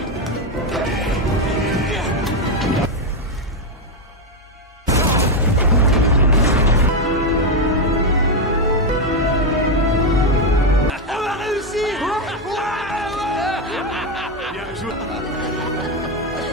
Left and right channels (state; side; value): normal; both; correlation 0.06